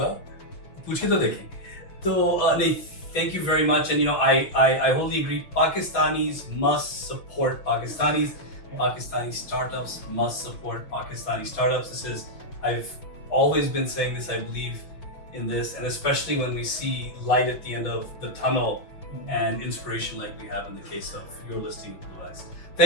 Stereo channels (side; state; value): right; late; 6.2 ms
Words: पूछे तो देखें. तो नहीं, thank you very much, and I wholly agree. Pakistanis must support Pakistanis. Pakistani startups must support Pakistani startups. I've always been saying this. I believe in this, and especially when we see light at the end of the tunnel and inspiration like we have in the case of your listing, BlueEx.